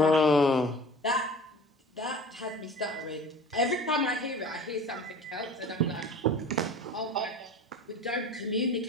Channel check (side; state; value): both; normal; correlation 0.40